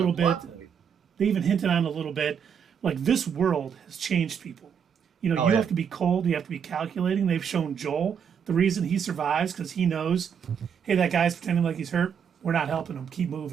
bit. plot point. They even hinted on a little bit, like, this world has changed people. You know, Oh, you yeah. have to be cold, you have to be calculating. They've shown Joel the reason he survives because he knows, hey, that guy's pretending like he's hurt. We're not helping him. Keep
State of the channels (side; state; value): left; quieter; 7.4 dB